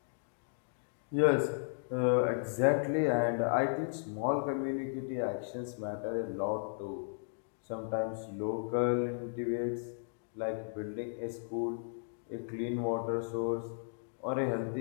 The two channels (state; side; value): silent; right; digital silence